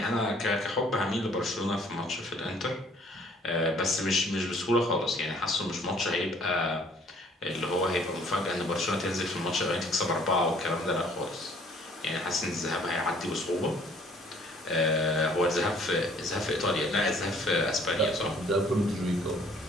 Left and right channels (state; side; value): normal; both; correlation 0.58